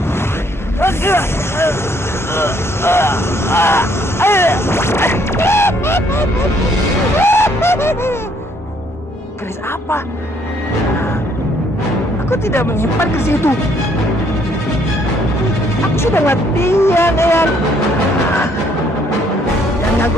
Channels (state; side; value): normal; both; correlation 0.66